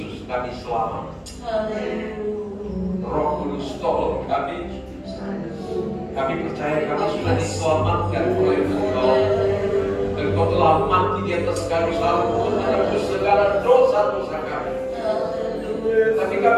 kami selamat. Roh Kudus tolong kami. Kami percaya kami sudah diselamatkan oleh Engkau. Engkau telah mati di atas kayu salib untuk menebus segala dosa-dosa kami. Tapi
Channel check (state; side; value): identical; both; correlation 1.00